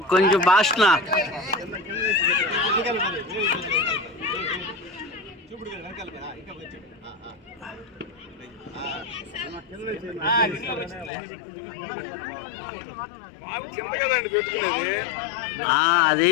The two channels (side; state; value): right; drops out; at 11.1 s